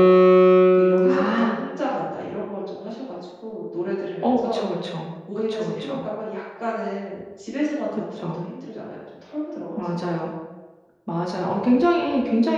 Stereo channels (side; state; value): both; identical; correlation 1.00